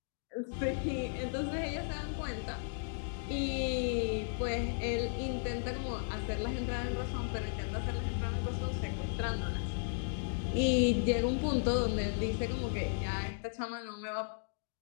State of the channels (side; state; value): right; silent; digital silence